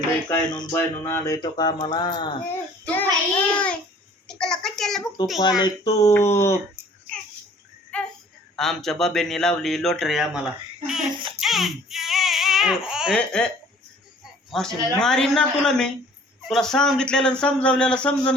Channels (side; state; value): both; normal; correlation 0.53